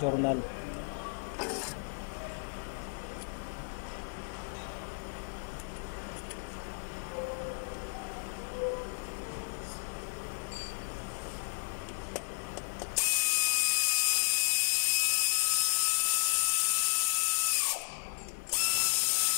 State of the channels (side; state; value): right; silent; digital silence